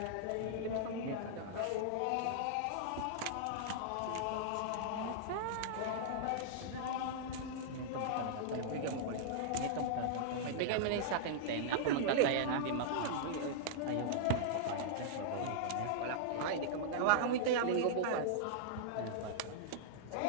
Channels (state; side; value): different; both; correlation -0.02